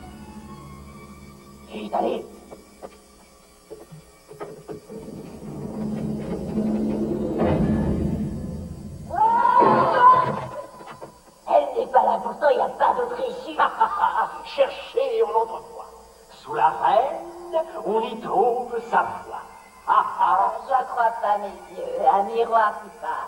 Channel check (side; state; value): both; identical; correlation 1.00